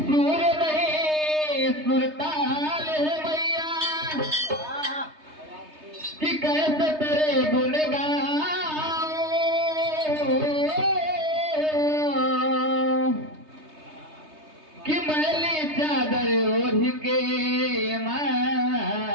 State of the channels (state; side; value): late; left; 3.2 ms